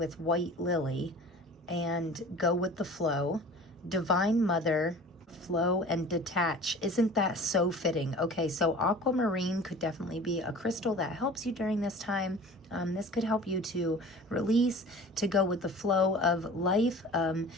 White Lily and Go with the Flow, Divine Mother, Flow, and Detach. Isn't that so fitting? Okay, so Aquamarine could definitely be a crystal that helps you during this time. This could help you to release, to go with the flow of life,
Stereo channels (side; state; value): both; normal; correlation 0.42